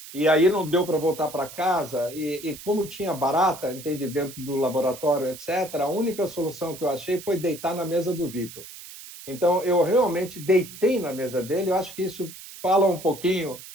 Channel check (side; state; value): right; noise; hiss, 15 dB below the sound